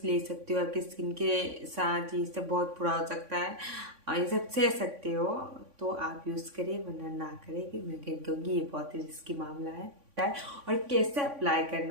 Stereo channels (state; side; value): late; left; 3.5 ms